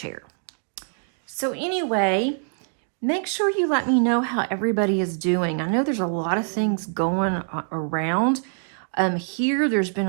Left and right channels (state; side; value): silent; left; 62 dB below the other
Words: So anyway, make sure you let me know how everybody is doing. I know there's a lot of things going around. Here, there's been